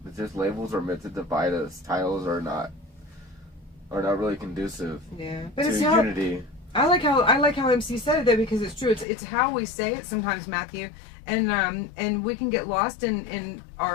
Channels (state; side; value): drops out; right; at 9.1 s